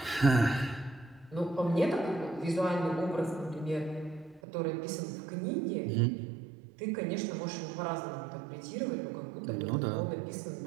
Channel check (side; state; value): left; drops out; at 4.4 s